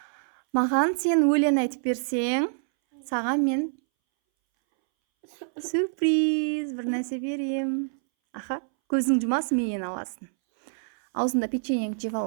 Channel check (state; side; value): silent; left; 61 dB below the other